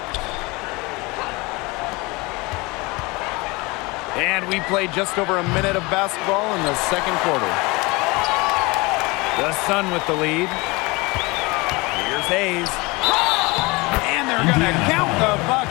And we played just over a minute of basketball in the second quarter. The Sun with the lead. Here's Hayes. And they're going to count the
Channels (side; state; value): right; quieter; 24.7 dB